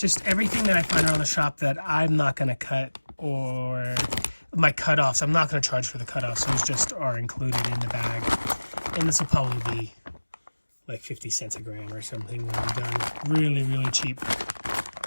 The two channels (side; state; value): both; inverted; correlation -1.00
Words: everything that I find around the shop that I'm not going to cut, or my cutoffs. I'm not going to charge for the cutoffs. Those just are included in the bag. And this will probably be like 50 cents a gram or something when I'm done. Really, really cheap.